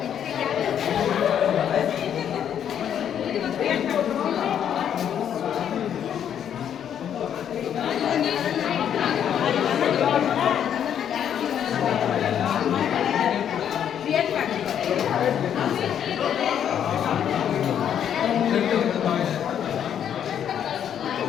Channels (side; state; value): right; quieter; 9.2 dB